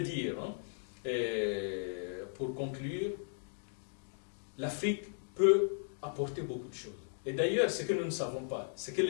dire, hein, pour conclure, l'Afrique peut apporter beaucoup de choses. Et d'ailleurs, ce que nous ne savons pas, ce que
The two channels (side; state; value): right; silent; digital silence